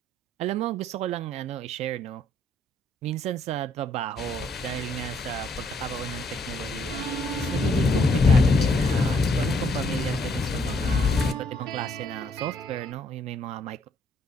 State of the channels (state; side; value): normal; both; correlation 0.68